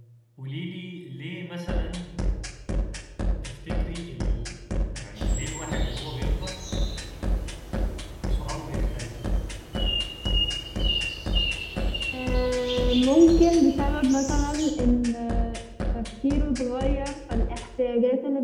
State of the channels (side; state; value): both; identical; correlation 1.00